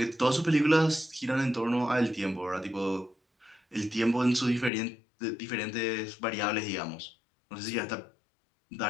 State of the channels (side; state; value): right; drops out; at 4.7 s